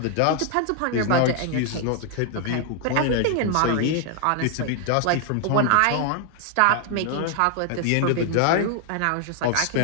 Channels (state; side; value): different; both; correlation 0.00